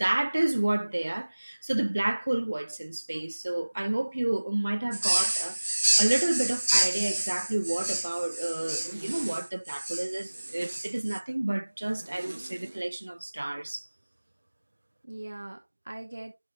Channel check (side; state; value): both; inverted; correlation -1.00